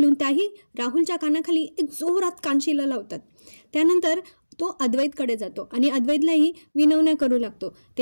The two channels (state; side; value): inverted; both; correlation -1.00